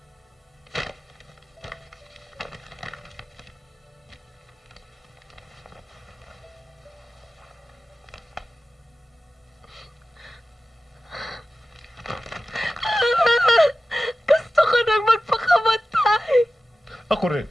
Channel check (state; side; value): normal; both; correlation 0.95